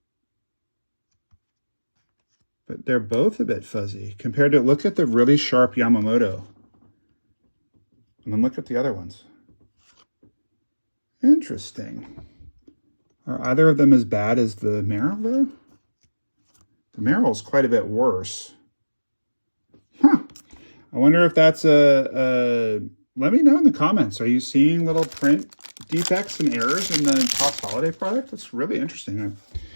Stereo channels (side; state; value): both; inverted; correlation -1.00